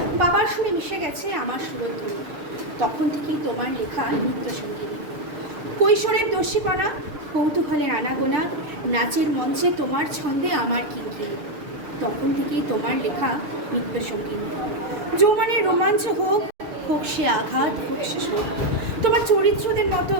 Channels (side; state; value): left; late; 6.7 ms